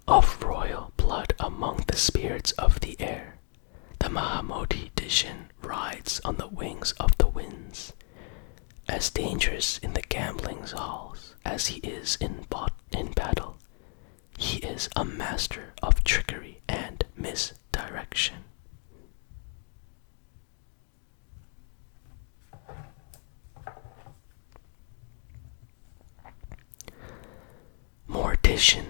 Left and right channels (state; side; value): quieter; right; 39.1 dB